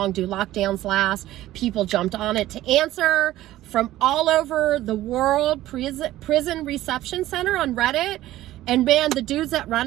do lockdowns last? People jumped on it to answer from all over the world. Prison Reception Center on Reddit. And man, the dudes that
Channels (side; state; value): left; quieter; 15.0 dB